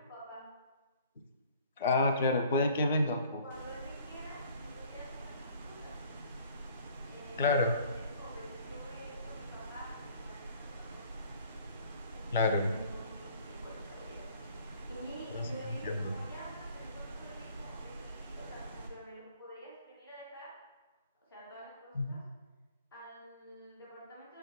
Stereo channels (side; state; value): both; inverted; correlation -0.55